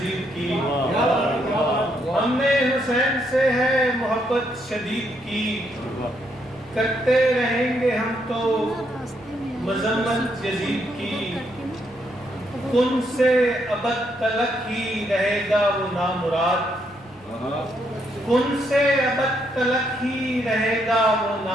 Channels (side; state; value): left; noise; rumble, 28 dB below the sound